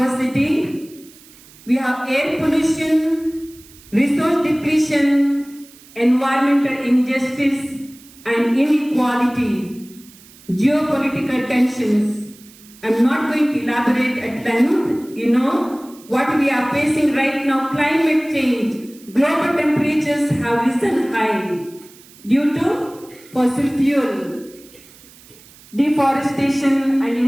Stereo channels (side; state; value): right; noise; hiss, 24 dB below the sound